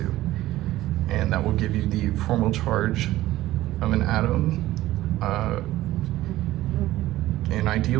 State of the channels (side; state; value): left; quieter; 15.7 dB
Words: And that will give you the formal charge of an atom in